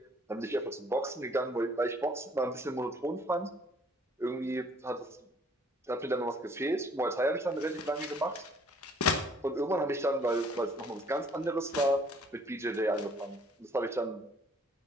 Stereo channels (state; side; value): normal; both; correlation 0.60